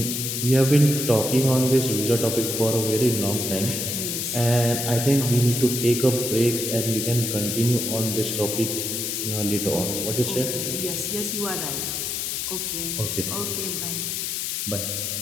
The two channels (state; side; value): noise; left; hiss, 2 dB below the sound